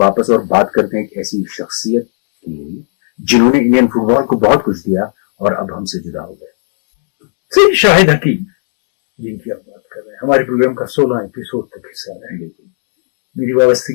और बात करते हैं एक ऐसी शख्सियत की जिन्होंने इंडियन फुटबॉल को बहुत कुछ दिया और अब हमसे जुदा हो गए। शाहिद हकीम जिनकी आप बात कर रहे हैं, हमारे प्रोग्राम का 16 एपिसोड तक हिस्सा रहे, मेरी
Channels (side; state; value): right; silent; digital silence